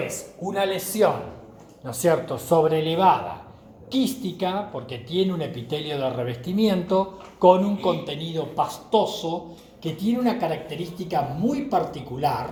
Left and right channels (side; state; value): both; identical; correlation 1.00